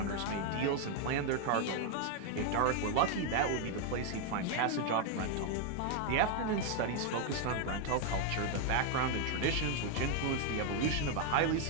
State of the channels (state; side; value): different; both; correlation 0.00